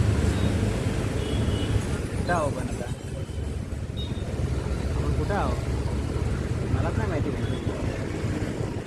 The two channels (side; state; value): both; identical; correlation 1.00